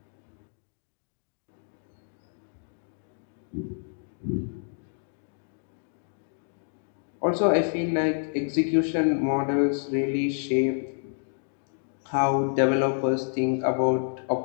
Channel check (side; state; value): right; silent; digital silence